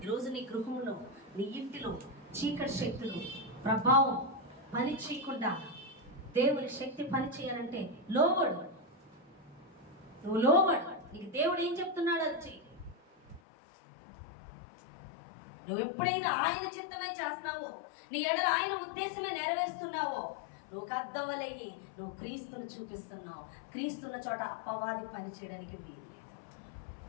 ఈరోజు నీ గృహంలో, నీ ఇంటిలో చీకటి శక్తులు ప్రభావం పని చేయకుండా దేవుని శక్తి పని చేయాలంటే లోబడు. నువ్వు లోబడు. నీకు దేవుడు ఏం చెప్తున్నాడు అది చెయ్యి. నువ్వు ఎప్పుడైనా ఆయన చిత్తమే చేస్తావో, నీ ఎడల ఆయన ఉద్దేశమే నెరవేరుస్తున్నావో, నువ్వు అర్థవలయ్యి నువ్వు క్రీస్తును చూపిస్తున్నావు. క్రీస్తున్న చోట అపవాది పని చేయడానికి వీల్లేదు.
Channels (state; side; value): drops out; right; at 13.4 s